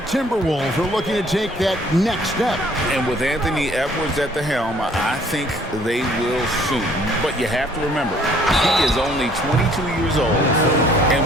are looking to take that next step. And with Anthony Edwards at the helm, I think they will soon. But you have to remember, he is only 22 years old.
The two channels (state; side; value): normal; both; correlation 0.59